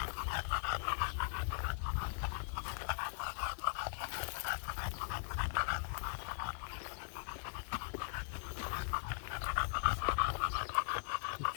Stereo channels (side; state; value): right; silent; 51 dB below the other